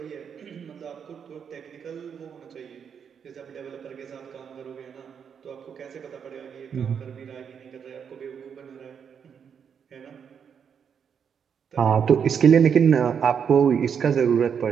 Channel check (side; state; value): left; quieter; 7.3 dB